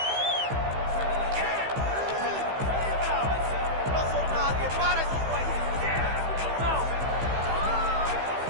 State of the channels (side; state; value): left; late; 15 ms